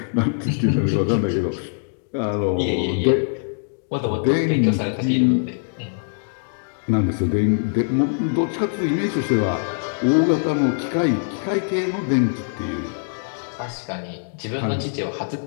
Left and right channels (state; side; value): silent; right; digital silence